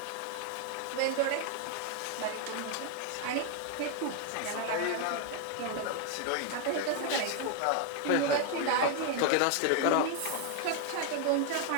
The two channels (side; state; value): both; different; correlation 0.01